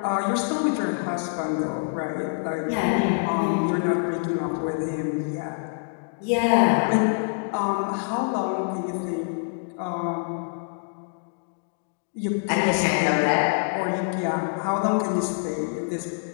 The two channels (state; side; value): silent; right; digital silence